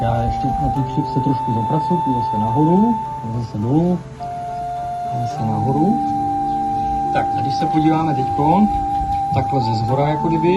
já ještě na ty křivce trošku zapracuju, půjdu zase nahoru, zase dolů, zase nahoru. Tak a když se podíváme teďkon, takhle ze zhora jako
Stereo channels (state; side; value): identical; both; correlation 1.00